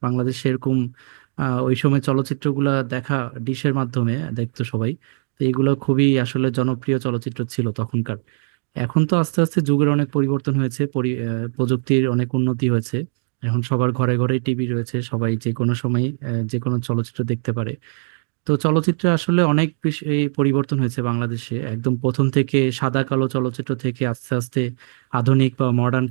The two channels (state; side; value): silent; left; digital silence